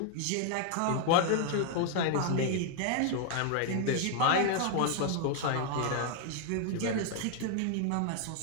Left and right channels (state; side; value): different; both; correlation 0.00